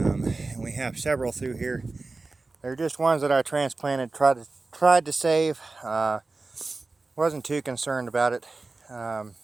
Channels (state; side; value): quieter; left; 3.6 dB